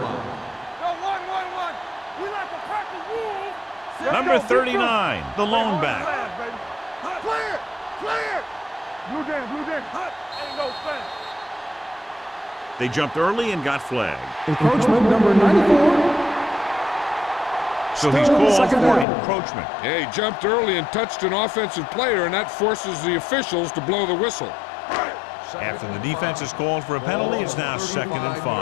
Go, 1-1-1. We like to practice rules. Number 39, the lone back. Clear! Clear! Blue down, blue down. Ain't no flag. They jumped early and got flagged. Encroachment number 94. So he's called for encroachment. Yeah, he jumped early and touched an offensive player, and that forces the officials to blow the whistle. After the defense is called for a penalty, it's now 2nd and 5.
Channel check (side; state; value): right; drops out; at 19.1 s